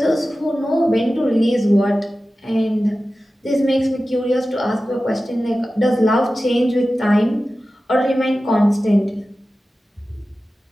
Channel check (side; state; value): both; normal; correlation 0.95